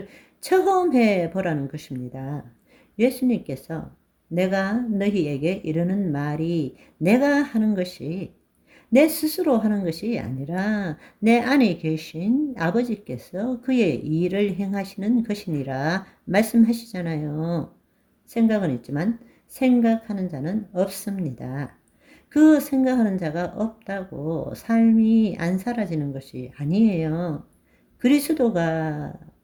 체험해 보라는 것입니다. 예수님께서 내가 너희에게 이르는 말이 내가 하는 것이 내 스스로 하는 것이 아니라 내 안에 계신 아버지께서 그의 일을 행하시는 것이니라 말씀하시잖아요. 생각은 있지만 생각하는 자는 없습니다. 그 생각하는 자가 없다고 삶이 안 사라지는 것이 아니에요. 그리스도가,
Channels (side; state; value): both; identical; correlation 1.00